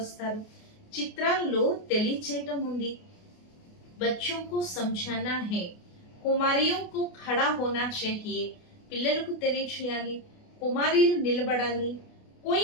చిత్రాల్లో తెలియచేయటం ఉంది. బచ్చోं को समझाना है. కుమారియో को खड़ा होना चाहिए. పిల్లలకు తెలియచేయాలి, కుమారీలు నిలబడాలి. कोई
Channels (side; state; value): right; late; 28 ms